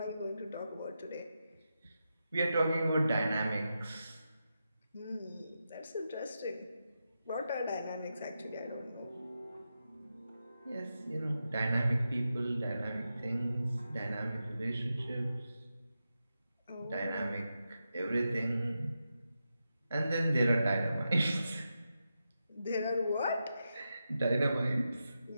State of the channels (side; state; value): both; inverted; correlation -0.88